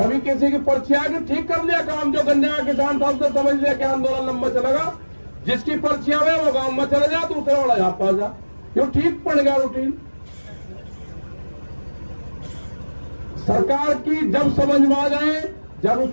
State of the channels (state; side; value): inverted; both; correlation -1.00